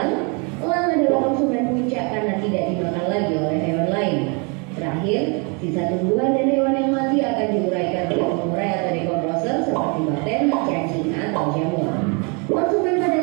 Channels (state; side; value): quieter; left; 33.7 dB